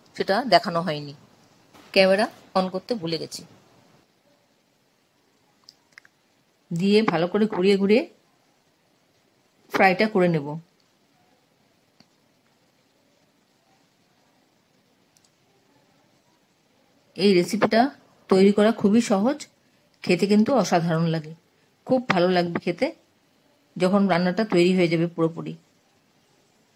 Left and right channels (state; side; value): identical; both; correlation 1.00